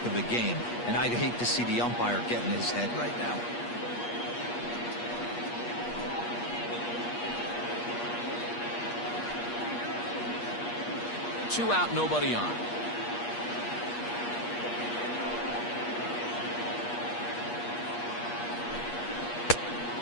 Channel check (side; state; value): right; late; 8.4 ms